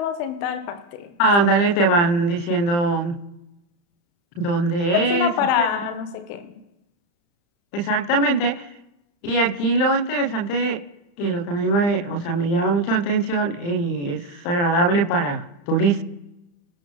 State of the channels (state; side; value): late; right; 35 ms